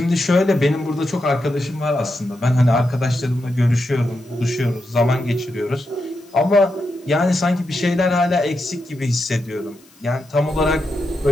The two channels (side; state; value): left; noise; hiss, 29 dB below the sound